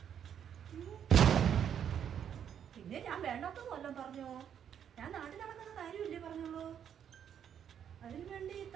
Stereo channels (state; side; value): quieter; left; 8.8 dB